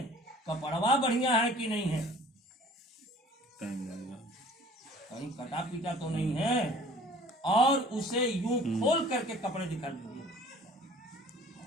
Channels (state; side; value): normal; both; correlation 0.50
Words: कपड़वा बढ़िया है कि नहीं है, कहीं कटा पीटा तो नहीं है, और उसे यूं खोल करके कपड़े दिखा दीजिए।